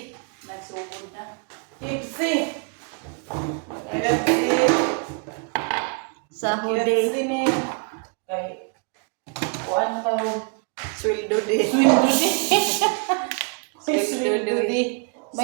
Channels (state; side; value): quieter; left; 37.7 dB